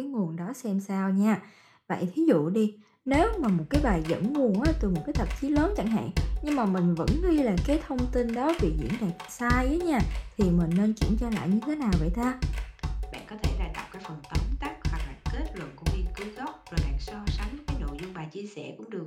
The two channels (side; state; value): both; identical; correlation 1.00